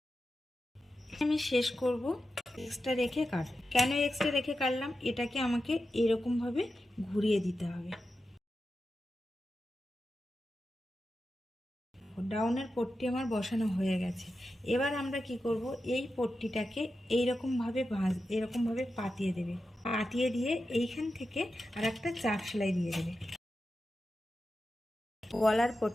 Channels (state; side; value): normal; both; correlation 0.91